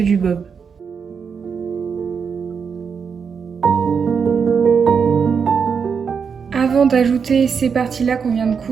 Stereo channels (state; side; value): quieter; left; 6.2 dB